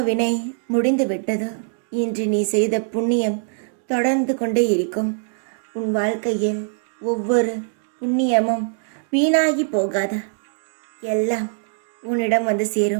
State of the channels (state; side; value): silent; left; digital silence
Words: வினை முடிந்து விட்டது. இன்று நீ செய்த புண்ணியம் தொடர்ந்து கொண்டே இருக்கும். உன் வாழ்க்கையில் ஒவ்வொரு புண்ணியமும் வீணாகி போகாத. எல்லாம் உன்னிடம் வந்து